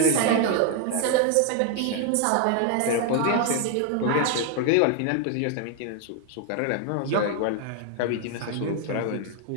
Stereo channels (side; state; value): both; different; correlation 0.01